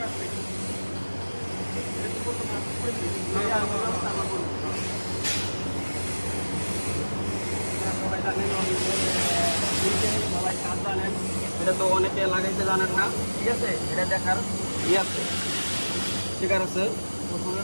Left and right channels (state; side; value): inverted; both; correlation -1.00